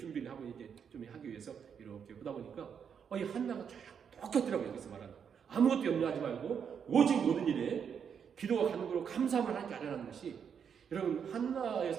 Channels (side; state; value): left; quieter; 7.4 dB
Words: 하고 이제 좀 하기 위해서 이렇게 보다 보니까 이 한나가 쫙 똑같더라고요. 여기서 말하는 아무것도 염려하지 말고 오직 모든 일에 기도와 간구로 감사함을 하나님께 아뢰라는 것이, 여러분 한나의